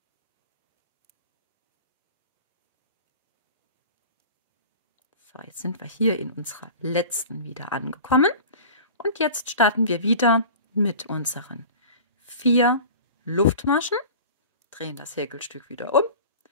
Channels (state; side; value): inverted; both; correlation -0.39